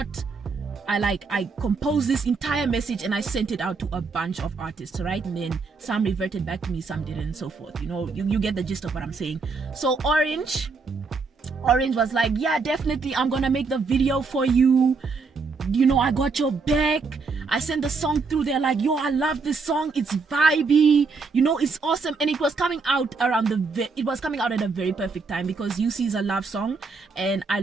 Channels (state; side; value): quieter; left; 4.5 dB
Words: composed this entire message, and I sent it out to a bunch of artists, right? And then some reverted back to me, some didn't, and so forth. You know, you get the gist of what I'm saying. So Orange was like, yeah, definitely, I'm gonna make the video for you, you know, I got your back. I sent the song through. They're like, yo, I love this song, it's vibey, you know, it's awesome. And it was coming out at a very perfect time, because UC is a love song, and I